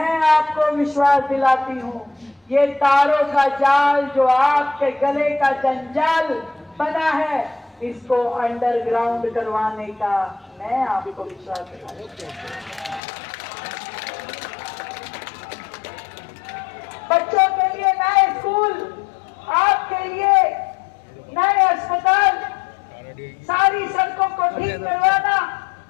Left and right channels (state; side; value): drops out; right; at 13.0 s